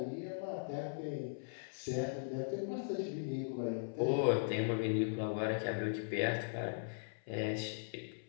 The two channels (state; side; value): silent; right; 52 dB below the other